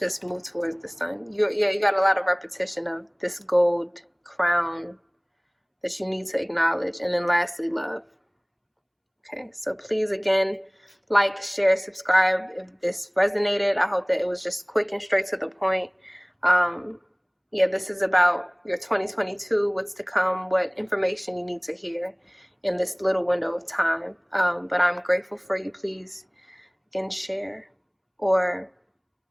move towards the sun. You got a lot of repetition of this gold crown that you need to acknowledge. And then lastly, love. Okay, so please, again, like, share, subscribe if this resonated. I hope that it was just quick and straight to the point. This is about your 2022, what's to come, what information you need to hear in this little window of time. But I'm grateful for you. Please, again, share or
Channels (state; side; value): identical; both; correlation 1.00